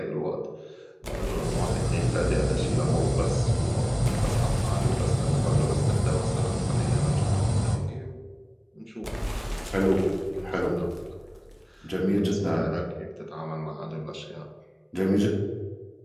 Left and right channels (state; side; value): identical; both; correlation 1.00